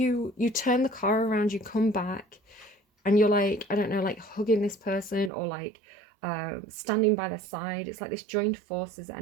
turn the car around, you come back, and you're like, I don't know, like hugging this person or like standing by their side. It's like this joined forces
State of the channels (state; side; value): drops out; left; at 5.3 s